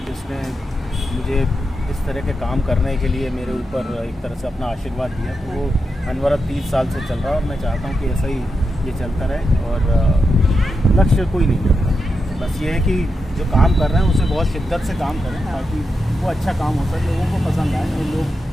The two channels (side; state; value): both; normal; correlation 0.87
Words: जिसने मुझे इस तरह के काम करने के लिए मेरे ऊपर एक तरह से अपना आशीर्वाद दिया। तो वो अनवरत 30 साल से चल रहा है और मैं चाहता हूँ कि ऐसा ही ये चलता रहे और लक्ष्य कोई नहीं है। बस ये है कि जो काम कर रहे हैं उसे बहुत शिद्दत से काम करें ताकि वो अच्छा काम हो सके, लोगों को पसंद आए और